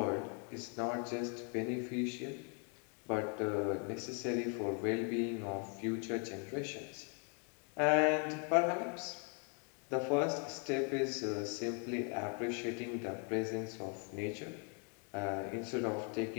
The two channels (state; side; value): quieter; right; 39.1 dB